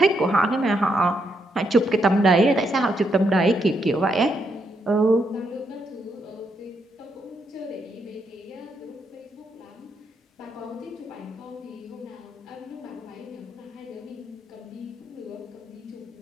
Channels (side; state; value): both; normal; correlation 0.78